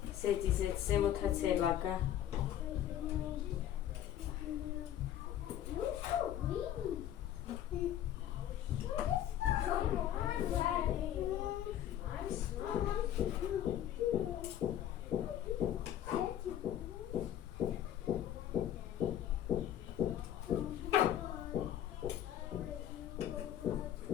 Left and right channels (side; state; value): right; quieter; 11.3 dB